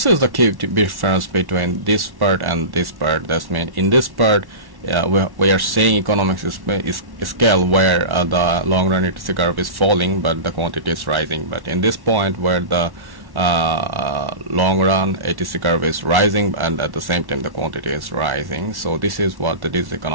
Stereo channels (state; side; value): late; left; 1.1 ms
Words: is the key difference between this part and this part. That means in this part we are saying economics is scale where the long run ATC curve is falling but the quantity is rising. But in this point where the long run ATC curve is rising and at the same time the quantity is rising. So this is what the